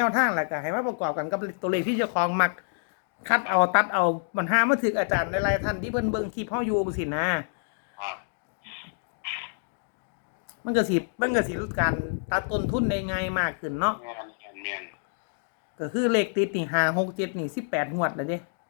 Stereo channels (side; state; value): right; silent; digital silence